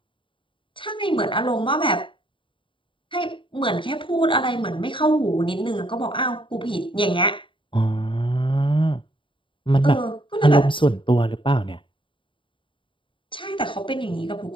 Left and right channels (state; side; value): late; right; 0.24 ms